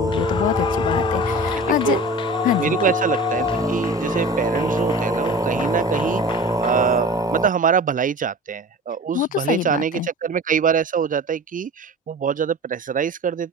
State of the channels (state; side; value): normal; both; correlation 0.37